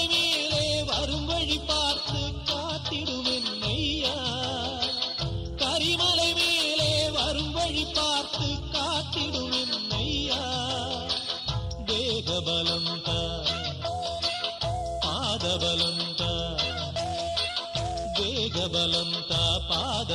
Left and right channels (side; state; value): both; identical; correlation 1.00